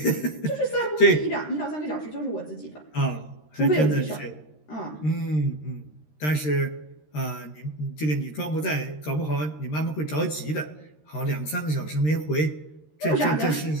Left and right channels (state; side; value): late; right; 13 ms